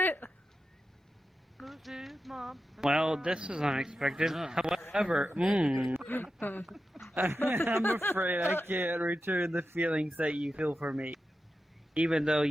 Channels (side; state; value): both; normal; correlation 0.91